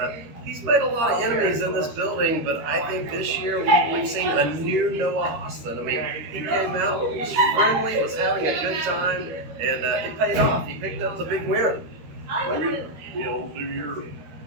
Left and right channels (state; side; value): late; left; 13 ms